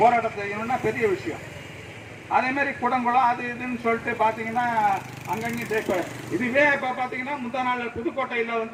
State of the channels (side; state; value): both; identical; correlation 1.00